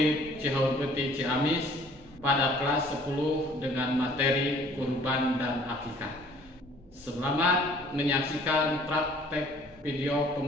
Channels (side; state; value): both; normal; correlation 0.55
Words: Cihurpeti Ciamis pada kelas 10 dengan materi kurban dan akikah. Selamat menyaksikan praktek video